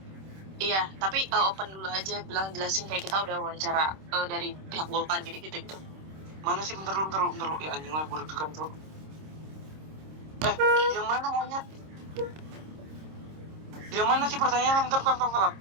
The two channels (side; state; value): left; late; 26 ms